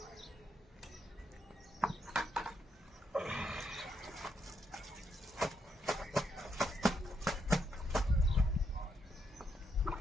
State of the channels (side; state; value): both; normal; correlation 0.78